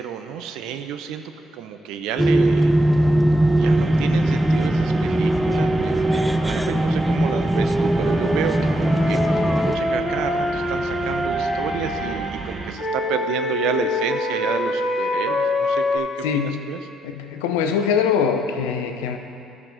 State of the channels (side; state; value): both; normal; correlation 0.76